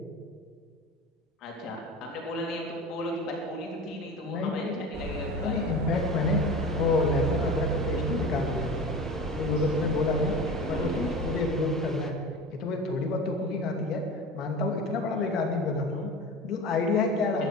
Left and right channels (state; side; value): normal; both; correlation 0.33